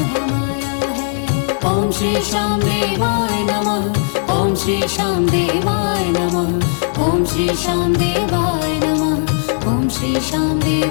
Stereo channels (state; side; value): silent; right; 68 dB below the other